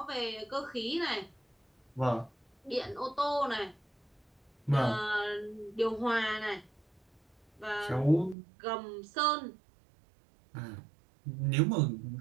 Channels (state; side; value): drops out; left; at 8.3 s